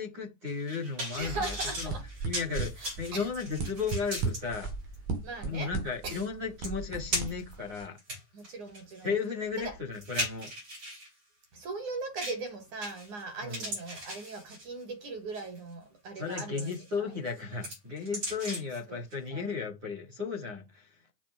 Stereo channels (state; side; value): late; left; 9.6 ms